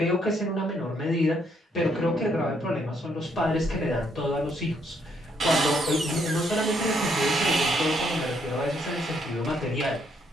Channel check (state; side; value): normal; both; correlation 0.72